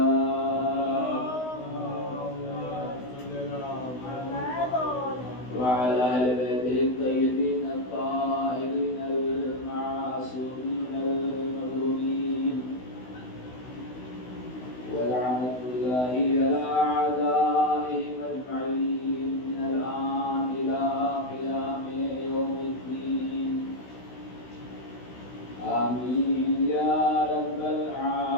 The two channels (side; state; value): right; late; 16 ms